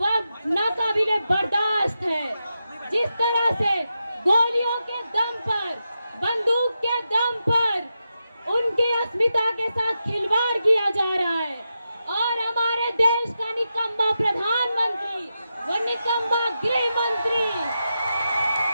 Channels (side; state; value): both; inverted; correlation -0.88